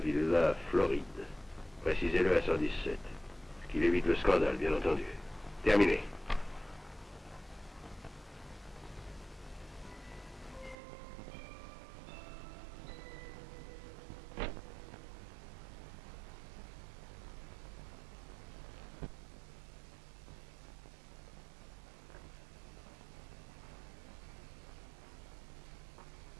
Floride. Précisez-le à 117. Qu'il évite le scandale, bien entendu. Terminé.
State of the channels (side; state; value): left; drops out; at 10.8 s